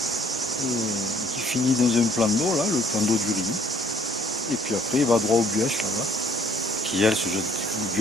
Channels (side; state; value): both; normal; correlation 0.61